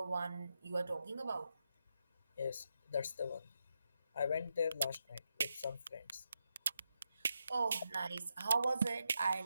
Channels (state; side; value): inverted; both; correlation -0.86